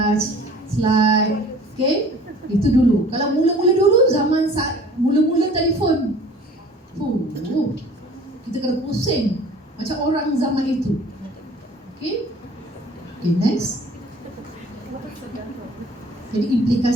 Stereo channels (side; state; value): both; normal; correlation 0.48